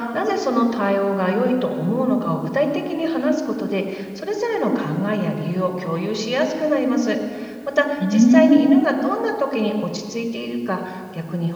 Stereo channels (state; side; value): identical; both; correlation 1.00